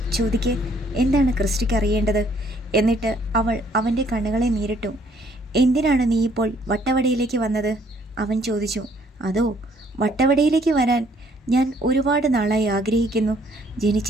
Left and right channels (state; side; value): normal; both; correlation 0.64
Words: ചോദിക്ക്, എന്താണ് ക്രിസ്റ്റിക്ക് അറിയേണ്ടത്? എന്നിട്ട് അവൾ അവൻ്റെ കണ്ണുകളെ നേരിട്ടു. എന്തിനാണ് നീ ഇപ്പോൾ വട്ടവടയിലേക്ക് വന്നത്? അവൻ ചോദിച്ചു. അതോ, വട്ടവടയിലേക്ക് വരാൻ ഞാൻ ഒരുപാട് നാളായി ആഗ്രഹിക്കുന്നു.